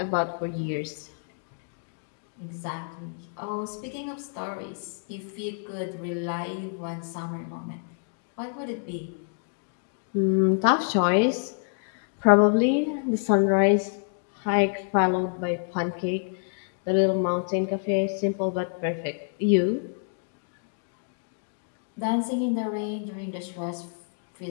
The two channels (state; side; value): silent; right; 60 dB below the other